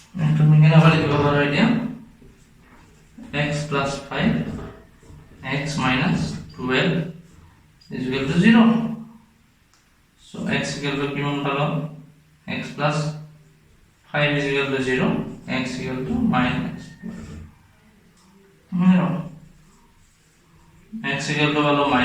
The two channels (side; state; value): both; identical; correlation 1.00